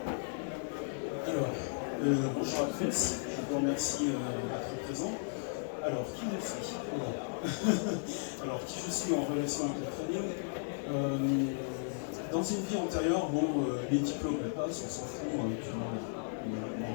Alors, bonjour à tous, je vous remercie d'être présent. Alors, qui je suis? Alors, qui je suis en relation avec le trading? Dans une vie antérieure, bon, les diplômes passent, on s'en fout,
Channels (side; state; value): right; silent; 54 dB below the other